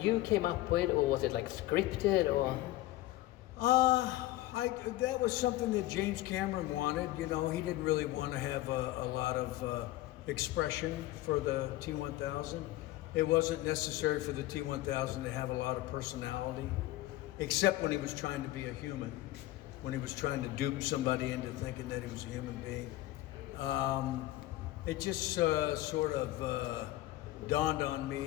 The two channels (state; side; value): quieter; right; 16.4 dB